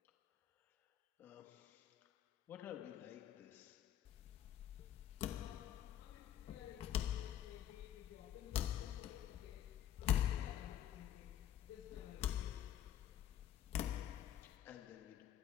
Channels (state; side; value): quieter; right; 11.0 dB